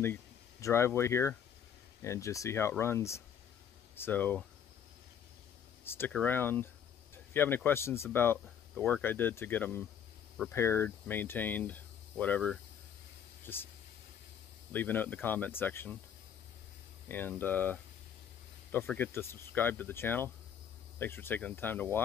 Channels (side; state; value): right; quieter; 8.4 dB